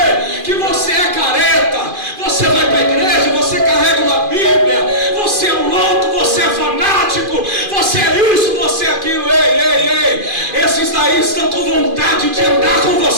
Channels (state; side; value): late; left; 2.5 ms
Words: que você é careta, você vai para a igreja, você carrega uma Bíblia, você é um louco, você é fanático, você é isso, você é aquilo. Ei, esses daí estão com vontade de andar com